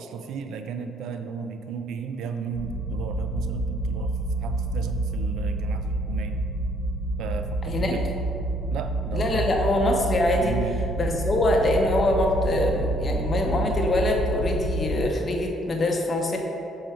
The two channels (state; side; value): normal; both; correlation 0.65